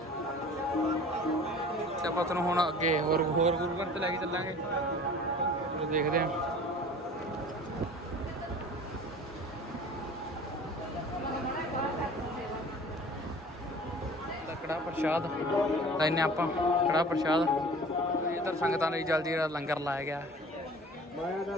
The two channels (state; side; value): normal; both; correlation 0.44